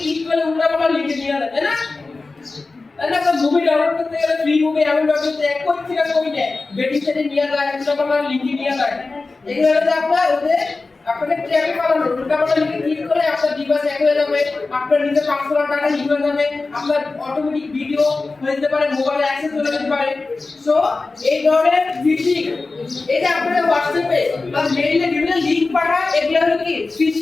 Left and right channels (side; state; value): right; quieter; 3.7 dB